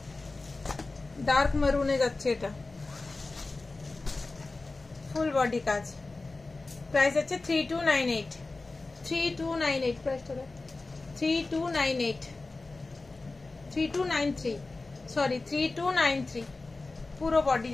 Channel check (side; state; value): right; quieter; 3.4 dB